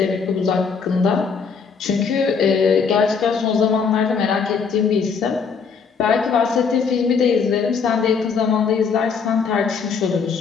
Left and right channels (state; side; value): quieter; right; 5.8 dB